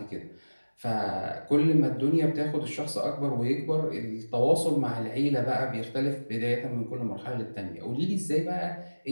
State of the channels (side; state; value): both; inverted; correlation -1.00